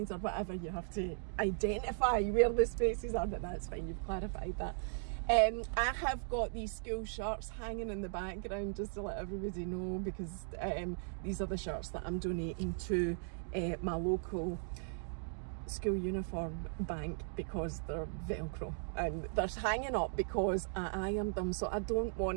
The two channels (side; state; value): left; silent; digital silence